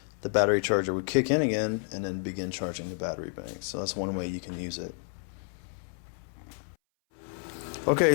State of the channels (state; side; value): silent; right; 58 dB below the other